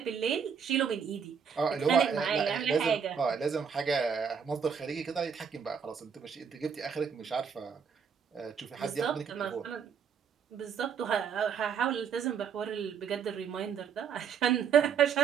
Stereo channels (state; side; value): quieter; left; 7.0 dB